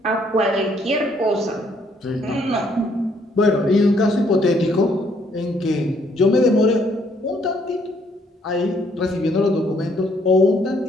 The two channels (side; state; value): both; normal; correlation 0.68